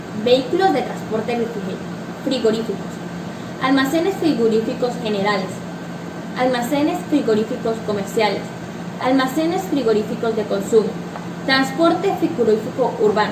Vehículos de transporte frigoríficos. Almacenes frigoríficos generales. Almacenes frigoríficos comerciales. Almacenes frigoríficos de consumo. Transporte frigorífico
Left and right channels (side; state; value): both; identical; correlation 1.00